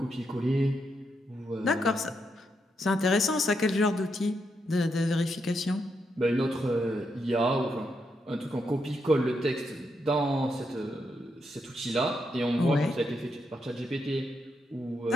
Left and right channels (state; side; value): normal; both; correlation 0.81